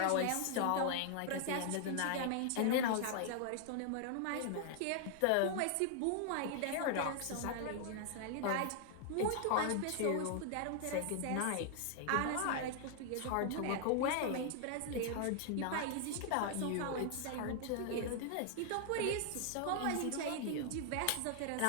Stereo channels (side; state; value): both; different; correlation 0.00